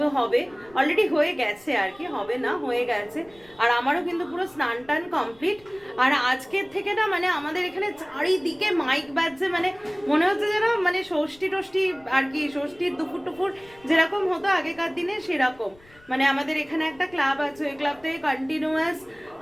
হবে, অলরেডি হয়ে গেছে আর কি, হবে না হয়ে গেছে। আর আমারও কিন্তু পুরো স্নান টান কমপ্লিট। আর আজকের থেকে না মানে আমাদের এখানে চারিদিকে মাইক বাজছে, মানে মনে হচ্ছে যেন মানে ষষ্ঠী টষ্ঠী আর কি, ষষ্ঠীর দুপুর টুপুর যেরকম হতো আগেকার দিনে সেরকম। মানে আমাদের এখানে একটা ক্লাব আছে, ওই ক্লাব থেকে কন্টিনিউয়াস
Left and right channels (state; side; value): noise; left; rumble, 27 dB below the sound